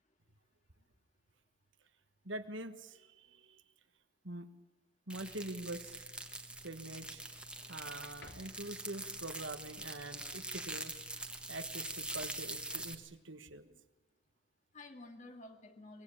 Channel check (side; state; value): both; normal; correlation -0.05